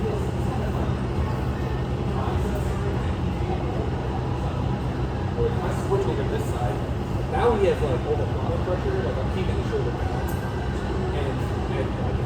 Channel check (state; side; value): identical; both; correlation 1.00